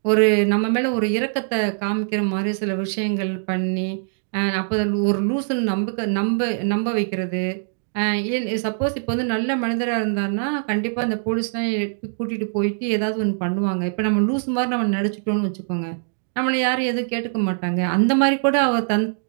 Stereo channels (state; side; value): silent; left; digital silence